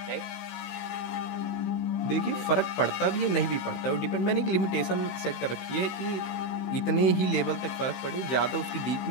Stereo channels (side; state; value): right; late; 16 ms